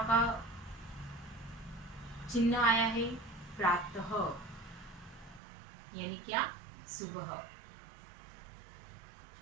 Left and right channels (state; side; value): drops out; left; at 5.4 s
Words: का चिन्ह आया है, प्रातः यानी क्या? सुबह।